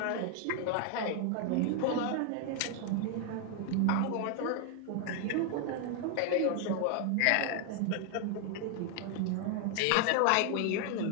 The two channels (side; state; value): both; different; correlation 0.00